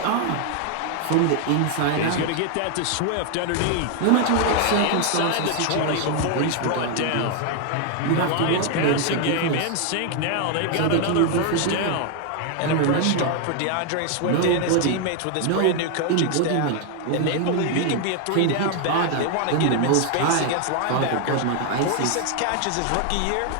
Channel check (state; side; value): different; both; correlation 0.00